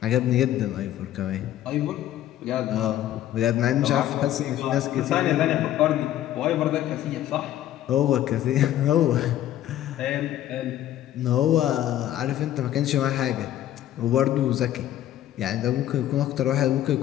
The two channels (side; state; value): right; quieter; 12.6 dB